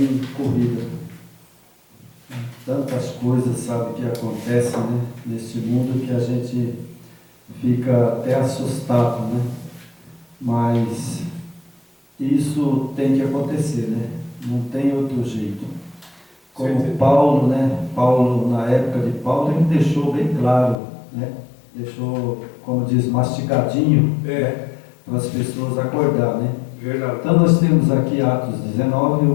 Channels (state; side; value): drops out; right; at 20.8 s